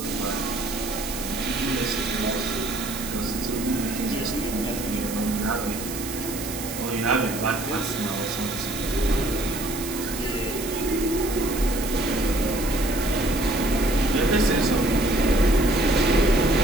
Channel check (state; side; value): noise; right; hiss, 9 dB below the sound